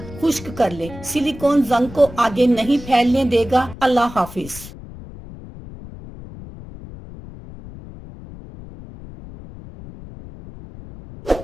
खुश्क कर लें। सिलिकॉन जंग को आगे नहीं फैलने देगा। अल्लाह हाफिज।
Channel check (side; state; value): left; noise; rumble, 15 dB below the sound